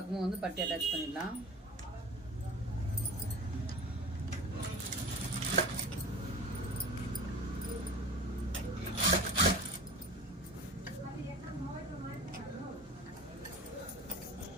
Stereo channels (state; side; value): normal; both; correlation 0.37